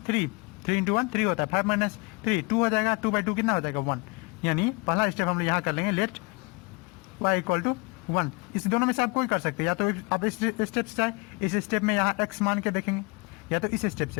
3, 3 × 1 3 होता है, 5 - 3 2 हो जाएगा, 2/2 कितना हो जाएगा 1। यानी पहला स्टेप हम लोग यहाँ कर लेंगे, लेट y = 1। इस दोनों में से आप कोई कर सकते हैं, या तो आप इस स्टेप से जाए, इस स्टेप में यहाँ x मान के देखेंगे, या तो इस स्टेप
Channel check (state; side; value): quieter; right; 28.9 dB